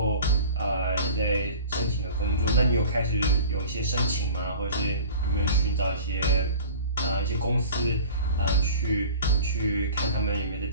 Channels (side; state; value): both; inverted; correlation -0.40